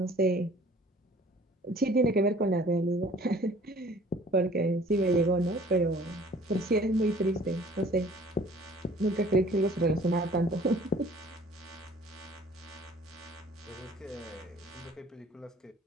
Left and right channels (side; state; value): both; normal; correlation 0.52